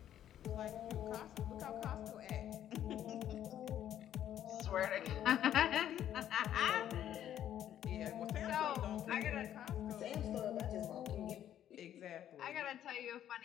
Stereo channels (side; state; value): right; quieter; 11.0 dB